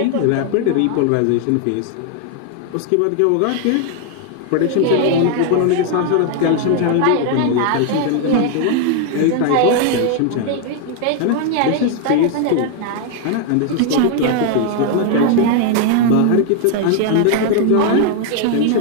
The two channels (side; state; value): both; different; correlation 0.00